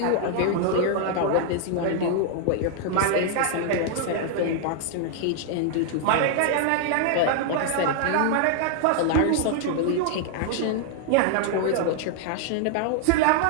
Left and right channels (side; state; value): both; different; correlation 0.00